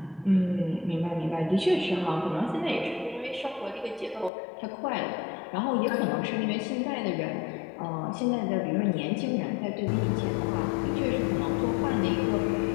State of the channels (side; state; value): right; drops out; at 4.3 s